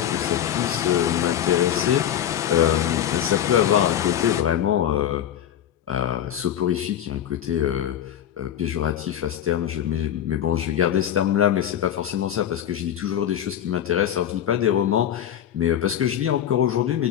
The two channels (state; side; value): quieter; right; 10.3 dB